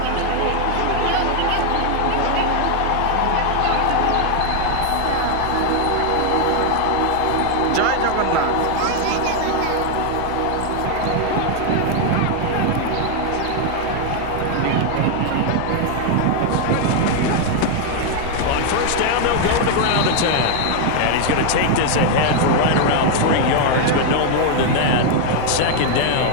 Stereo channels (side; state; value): both; different; correlation 0.00